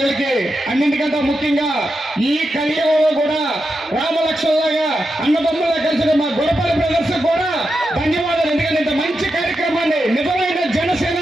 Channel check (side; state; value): both; normal; correlation 0.88